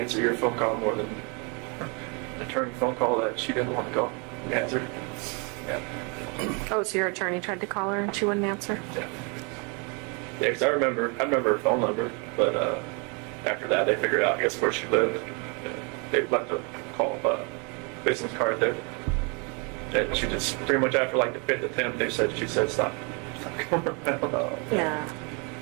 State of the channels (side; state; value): left; quieter; 33.5 dB